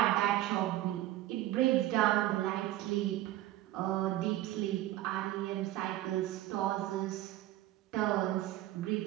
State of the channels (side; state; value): left; quieter; 15.0 dB